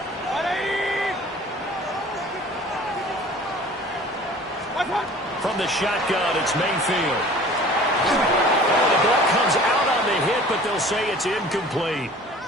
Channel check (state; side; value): normal; both; correlation 0.46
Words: From the shotgun, it's Mayfield. The ball comes out on the hit, but they'll say it's incomplete.